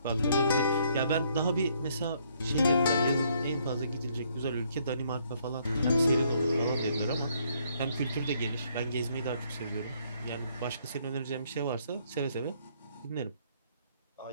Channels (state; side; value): inverted; both; correlation -0.68